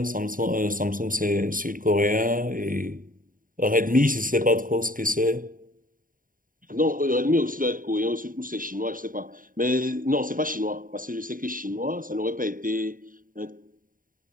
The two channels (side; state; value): left; late; 0.40 ms